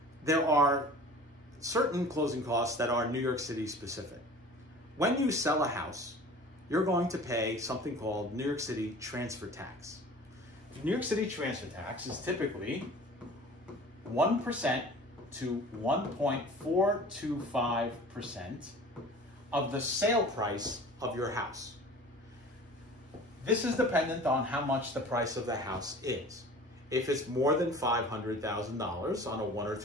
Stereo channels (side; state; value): both; normal; correlation 0.42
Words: there are certain closing costs that are New York City specific. When you sell a house, you're going to pay something called New York City transfer tax. The New York City transfer tax is typically 1% to 1.425% of the sale price of your house. This is dependent on how much the price of the house is. If it's more than $500,000 on a 1 or